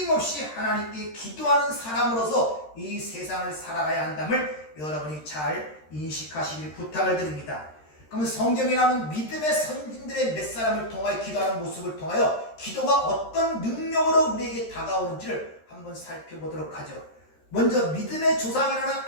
하나님께 기도하는 사람으로서 이 세상을 살아가야 한다를 여러분이 잘 인식하시길 부탁을 드립니다. 그러면 성경에 나오는 믿음의 선진들의 몇 사람을 통하여 기도하는 모습을 통하여 기도가 어떤 능력으로 우리에게 다가오는지를 한번 살펴보도록 하죠. 먼저 믿음의 조상이라는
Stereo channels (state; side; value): late; right; 13 ms